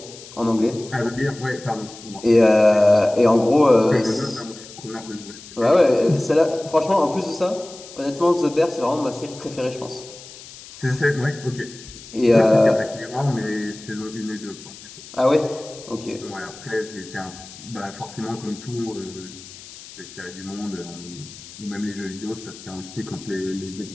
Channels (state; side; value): noise; left; hiss, 17 dB below the sound